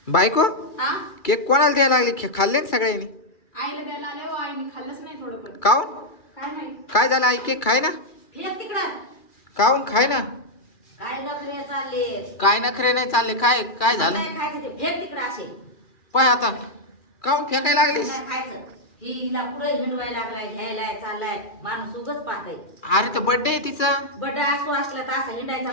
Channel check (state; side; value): late; right; 2.3 ms